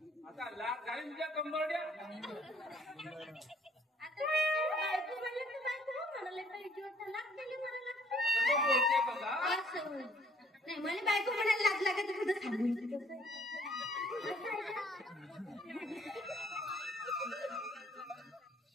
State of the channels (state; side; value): normal; both; correlation 0.61